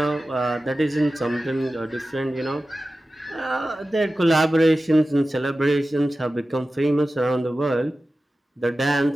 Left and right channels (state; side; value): normal; both; correlation 0.95